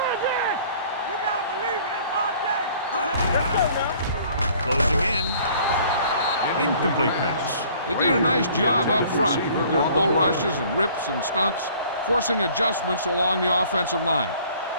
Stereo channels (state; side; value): inverted; both; correlation -0.54